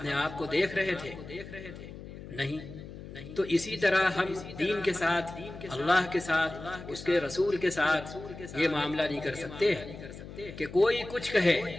آپ کو دیکھ رہے تھے؟ نہیں۔ تو اسی طرح ہم دین کے ساتھ، اللہ کے ساتھ، اس کے رسول کے ساتھ یہ معاملہ نہیں کر سکتے کہ کوئی کچھ کہے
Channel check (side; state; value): left; noise; hum, 13 dB below the sound